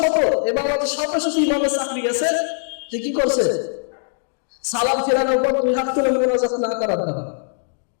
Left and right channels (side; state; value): right; silent; digital silence